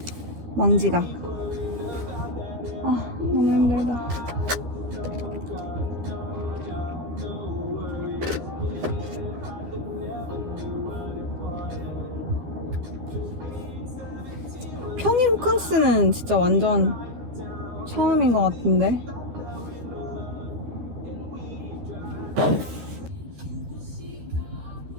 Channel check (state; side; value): late; left; 13 ms